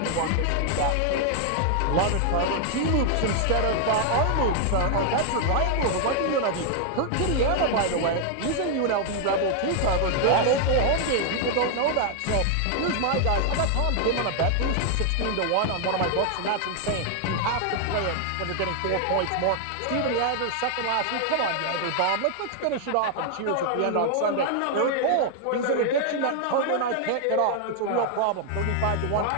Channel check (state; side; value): different; both; correlation 0.00